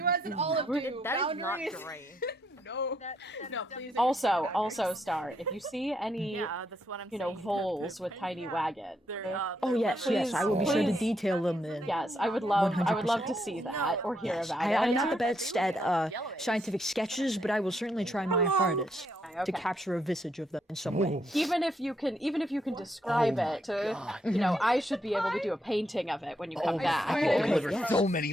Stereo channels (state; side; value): normal; both; correlation 0.76